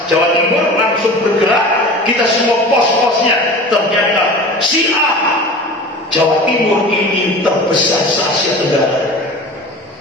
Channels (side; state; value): both; normal; correlation 0.36